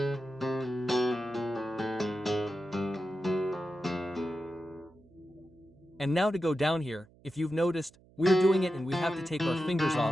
And now to go down here, if you've noticed, we're doing it and we have to take our fingers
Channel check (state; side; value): noise; right; hum, 27 dB below the sound